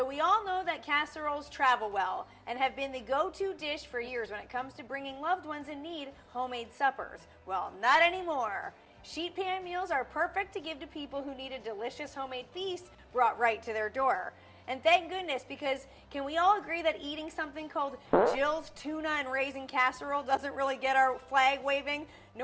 we all know that casseroles travel well and have been the go-to dish for years when it comes to bringing loved ones in need homemade suppers. Well, not anymore. Sheet pan meals are perfect to give to people who need a delicious homemade feast brought right to their door. And thank goodness, because can we all agree that eating something called Jill's tuna and raisin casserole doesn't really get our flag waving?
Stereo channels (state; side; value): identical; both; correlation 1.00